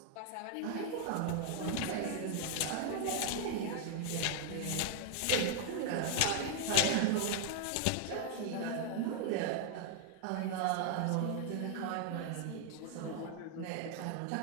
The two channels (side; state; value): both; different; correlation 0.00